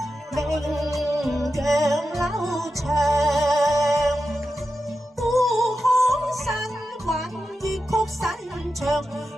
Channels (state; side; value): normal; both; correlation 0.90